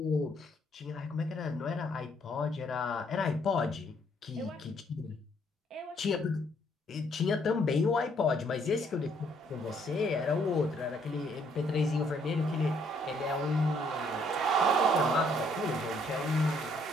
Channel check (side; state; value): both; normal; correlation 0.67